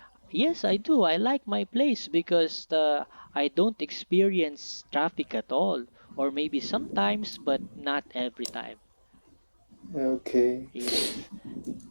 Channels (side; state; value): both; inverted; correlation -1.00